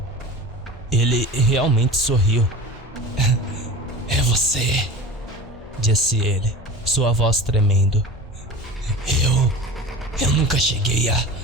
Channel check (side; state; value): both; normal; correlation 0.34